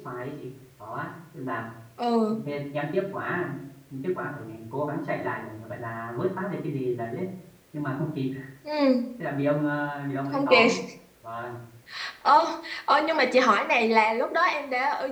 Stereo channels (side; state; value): both; identical; correlation 1.00